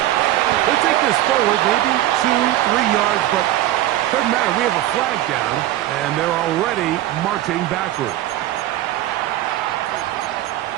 They take this forward maybe 2-3 yards, but doesn't matter. We have a flag down, and they're already marching backward.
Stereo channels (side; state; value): left; quieter; 14.3 dB